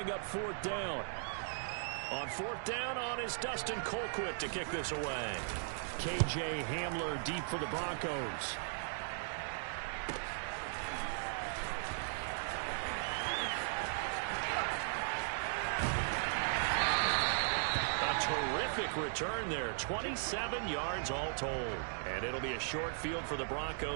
up 4th down. On 4th down on is Dustin Colquitt to kick this away. KJ Hamler deep for the Broncos. Terrific return there. 27 yards all told. And it'll be a short field for the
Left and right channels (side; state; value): left; silent; digital silence